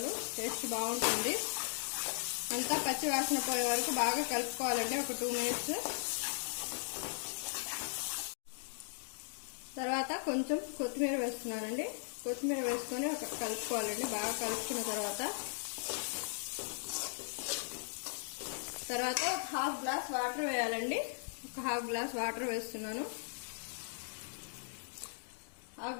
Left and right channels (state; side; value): silent; right; digital silence